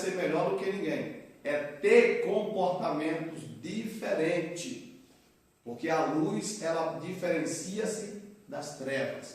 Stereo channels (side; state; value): both; identical; correlation 1.00